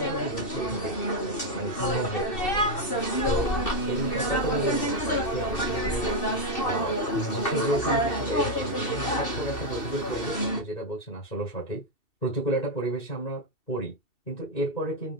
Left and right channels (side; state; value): right; late; 2.7 ms